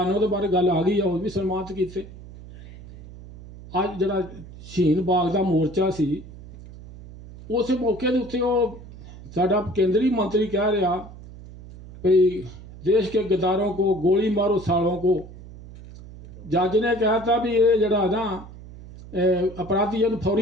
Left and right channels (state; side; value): noise; right; hum, 17 dB below the sound